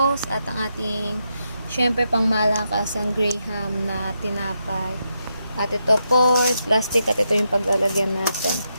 at ang ating, syempre, pang malakas ang Graham na tinapay. At ito po, plastic, at ito yung paglalagyan natin.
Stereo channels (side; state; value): both; inverted; correlation -0.83